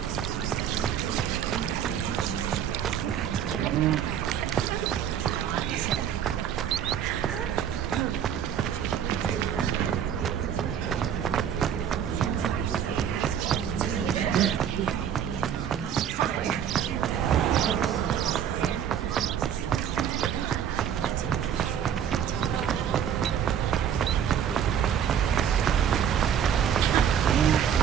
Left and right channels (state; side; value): quieter; left; 9.0 dB